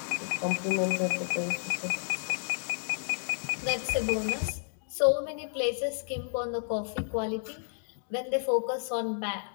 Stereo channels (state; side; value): silent; right; digital silence